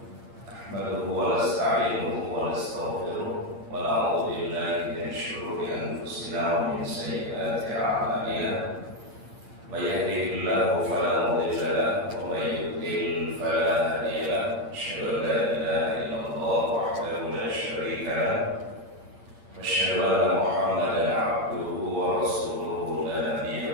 Nahmaduhu wa nasta'inuhu wa nastaghfiruh wa na'udzu billahi min shururi anfusina wa min sayyiati a'malina. May yahdihillahu fala mudilla lahu wa may yudlil fala hadiya lahu. Asyhadu an la ilaha illallah wahdahu la syarika lahu. أشهد أن محمدا عبده ورسوله لا نبي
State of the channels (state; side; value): late; left; 8.7 ms